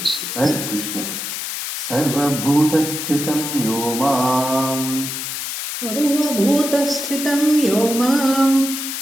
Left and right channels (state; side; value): noise; left; hiss, 5 dB below the sound